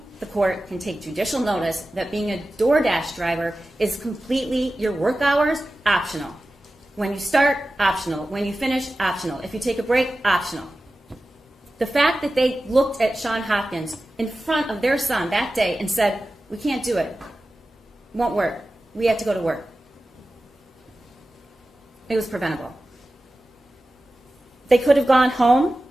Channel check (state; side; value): normal; both; correlation 0.95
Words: the court can take judicial notice that being a DoorDash driver is completely, your work hours, optional. When you start, optional. When you finish, optional. If you take a break, optional. The fact that they looked at Sean Hopkins in front of their son that day and said, we can't do it. Won't work. We have to go to work. It was preventable. They could have gone home